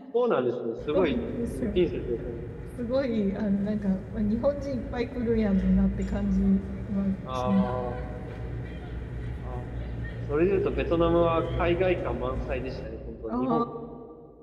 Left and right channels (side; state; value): both; identical; correlation 1.00